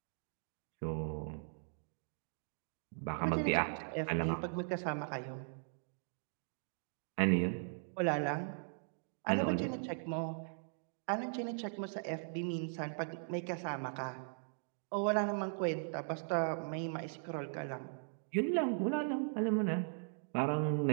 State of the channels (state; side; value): silent; left; digital silence